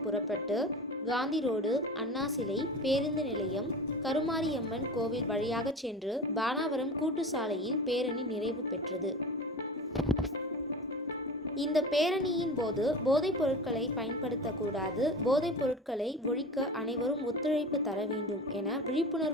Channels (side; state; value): both; normal; correlation 0.32